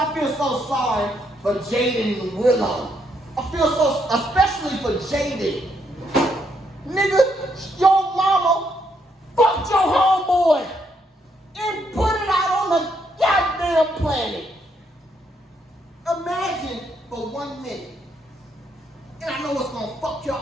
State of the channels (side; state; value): both; normal; correlation 0.75